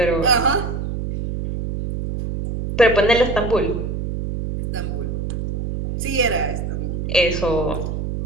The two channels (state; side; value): noise; right; hum, 3 dB below the sound